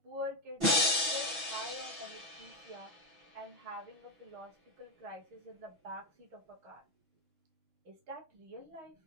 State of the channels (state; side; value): late; left; 6.0 ms